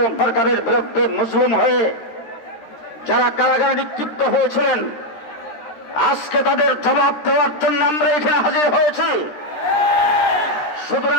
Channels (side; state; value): right; late; 13 ms